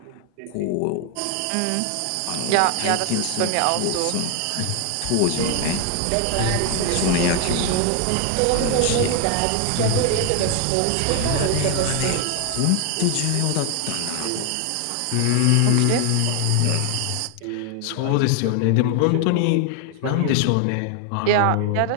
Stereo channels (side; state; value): both; different; correlation 0.01